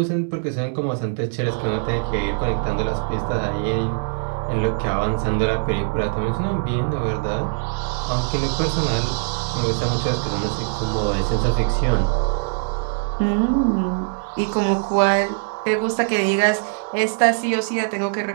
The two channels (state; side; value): silent; left; 64 dB below the other